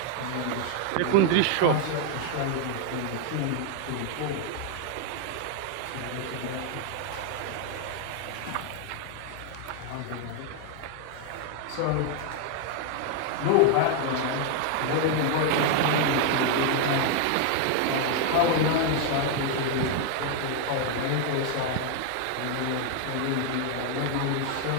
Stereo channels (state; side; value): different; both; correlation 0.00